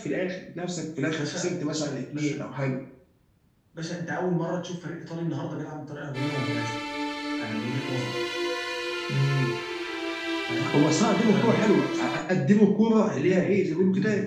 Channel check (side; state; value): both; identical; correlation 1.00